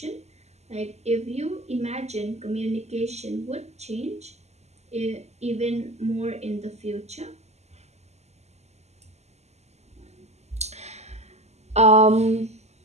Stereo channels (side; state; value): left; late; 0.32 ms